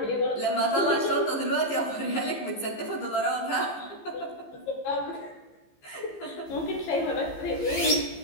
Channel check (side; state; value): right; late; 15 ms